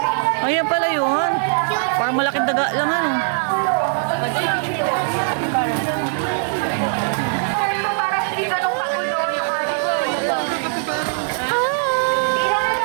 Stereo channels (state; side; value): silent; left; digital silence